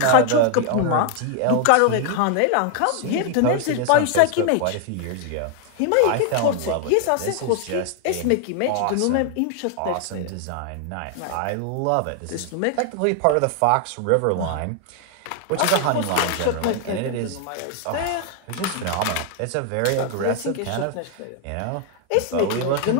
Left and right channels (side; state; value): both; different; correlation 0.00